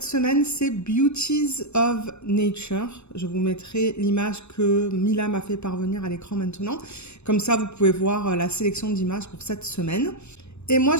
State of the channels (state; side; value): late; right; 0.81 ms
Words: semaine, c'est Beauties of Nature. Je vous mettrai l'image que Mila m'a fait parvenir à l'écran maintenant. Comme ça, vous pouvez voir la sélection d'images pour cette semaine. Et moi,